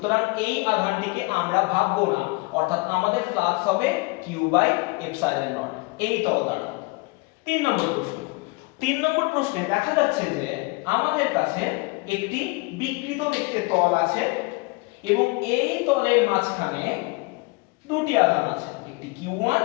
এই আধানটিকে আমরা ভাববো না, অর্থাৎ আমাদের ফ্লাক্স হবে কিউ বাই এপসাইলন নট এই তল দ্বারা। 3 নম্বর প্রশ্ন। 3 নম্বর প্রশ্নে দেখা যাচ্ছে যে আমাদের কাছে একটি বিকৃত দেখতে তল আছে এবং এই তলের মাঝখানে দুটি আধান আছে, একটি Q1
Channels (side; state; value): right; quieter; 26.7 dB